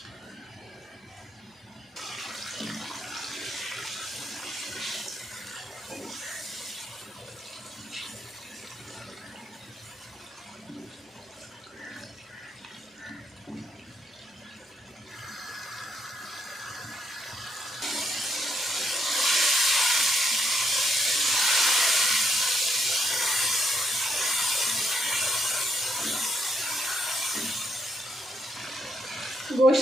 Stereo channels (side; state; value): both; normal; correlation 0.75